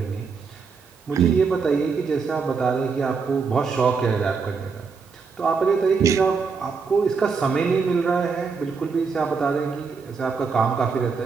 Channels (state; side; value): quieter; left; 5.2 dB